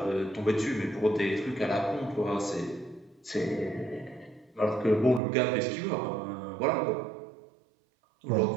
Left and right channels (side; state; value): left; drops out; at 5.2 s